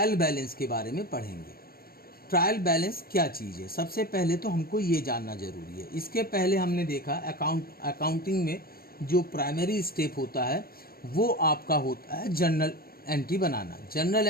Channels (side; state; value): right; late; 0.44 ms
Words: बैलेंस के बारे में पढ़ेंगे। ट्रायल बैलेंस क्या चीज़ है, सबसे पहले तो हमको ये जानना ज़रूरी है। इसके पहले हमने देखा अकाउंटिंग में जो प्राइमरी स्टेप होता है वो आपका होता है जर्नल एंट्री बनाना। जर्नल